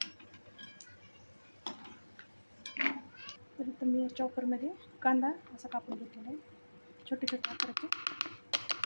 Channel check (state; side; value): inverted; both; correlation -1.00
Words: तर इथं मी चॉपरमध्ये कांदा असा कापून घेतलेला आहे. छोटे छोटे आकाराचे